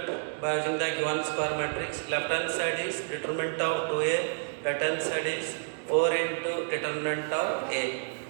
by using the given square matrix. Left hand side is determinant of 2a, right hand side is 4 into determinant of a.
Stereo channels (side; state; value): left; silent; digital silence